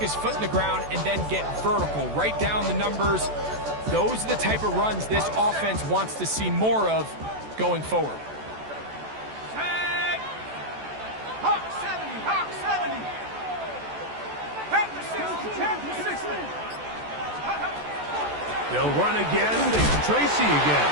foot in the ground, and then get vertical. Right down the numbers. Those are the type of runs this offense wants to see more of going forward. Hawk 70, Hawk 70. Panther 60, Panther 60. They'll run again. It's Tracy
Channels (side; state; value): left; late; 14 ms